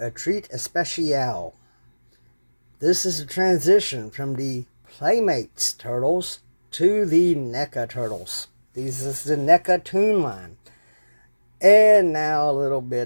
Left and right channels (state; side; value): inverted; both; correlation -1.00